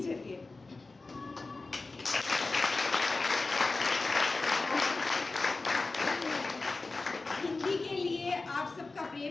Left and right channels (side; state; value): right; quieter; 3.6 dB